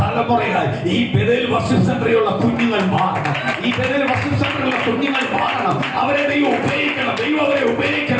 തലമുറയായി ഈ ബെഥേൽ വർഷിപ്പ് സെന്ററിലുള്ള കുഞ്ഞുങ്ങൾ മാറണം. ഈ ബെഥേൽ വർഷിപ്പ് സെന്ററിലുള്ള കുഞ്ഞുങ്ങൾ മാറണം. അവരെ ദൈവം ഉപയോഗിക്കണം. ദൈവം അവരെ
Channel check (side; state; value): both; identical; correlation 1.00